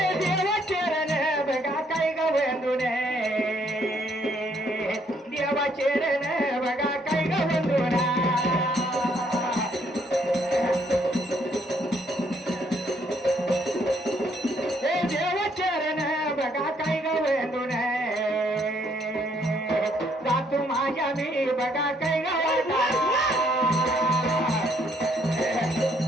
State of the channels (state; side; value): normal; both; correlation 0.69